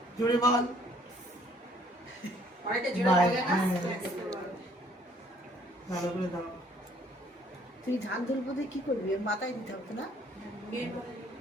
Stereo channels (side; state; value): both; normal; correlation 0.62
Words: জোরে বল অনেকটা জোরে বাই। বলে না? ভালো করে দাও। তুই ধান তুলবো দিয়ে কি করবি এর মাথায় দিতে হবে না